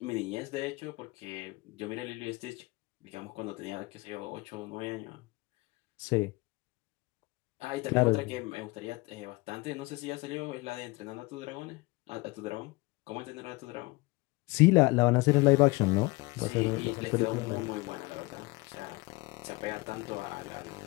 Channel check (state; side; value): quieter; right; 23.2 dB